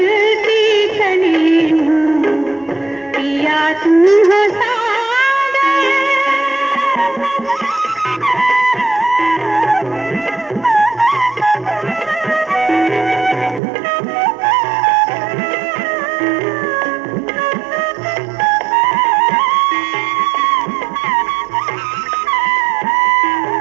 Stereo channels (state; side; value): drops out; left; at 13.6 s